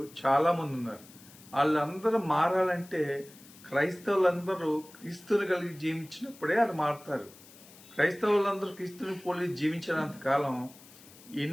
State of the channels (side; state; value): left; noise; hiss, 22 dB below the sound